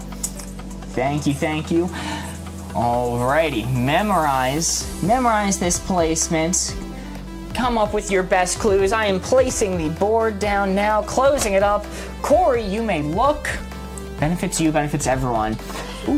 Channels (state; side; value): identical; both; correlation 1.00